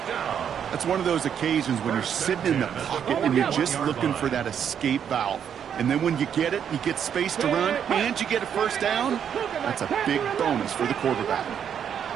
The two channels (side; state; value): left; quieter; 8.4 dB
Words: That's one of those occasions when you're sitting in the pocket and you're just looking for that escape valve. And then when you get it, you get space to run, and you get a first down. That's a big bonus for the quarterback.